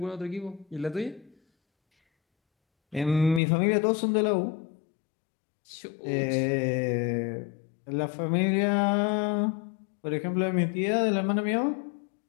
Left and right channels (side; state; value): right; drops out; at 3.4 s